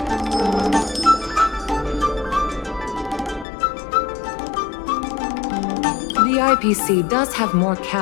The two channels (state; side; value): drops out; right; at 3.5 s